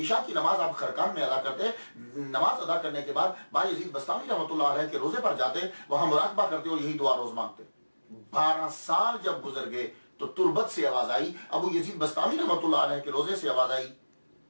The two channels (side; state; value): both; inverted; correlation -1.00